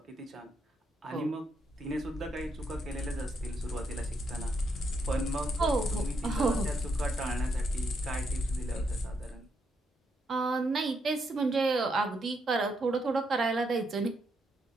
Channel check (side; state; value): both; normal; correlation 0.78